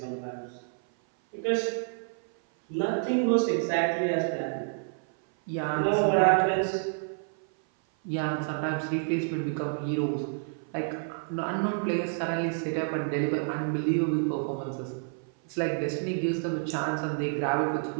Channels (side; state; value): left; silent; 57 dB below the other